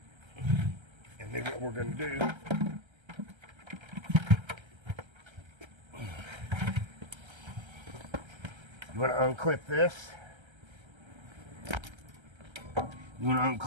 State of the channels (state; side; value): late; left; 1.3 ms